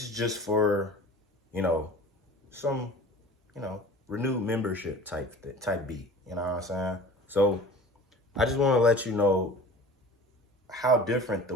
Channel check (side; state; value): both; normal; correlation 0.42